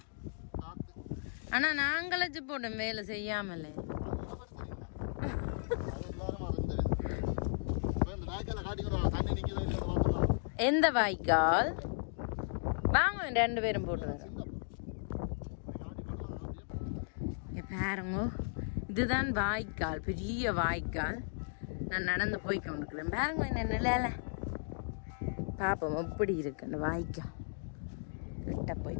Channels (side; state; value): right; silent; digital silence